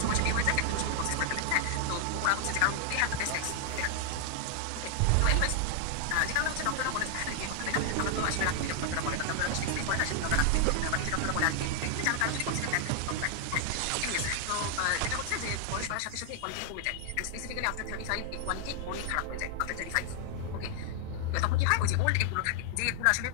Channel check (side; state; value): both; different; correlation 0.00